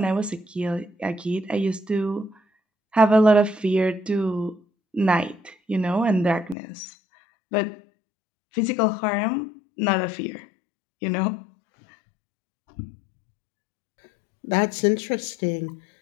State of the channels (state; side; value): drops out; right; at 6.6 s